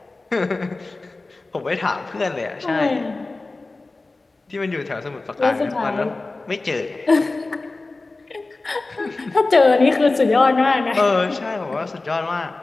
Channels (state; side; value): quieter; right; 3.3 dB